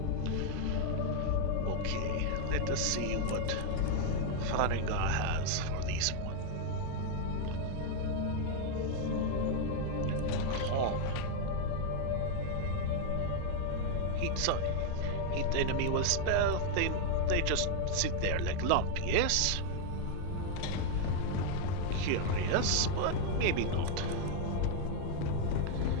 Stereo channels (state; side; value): different; both; correlation 0.00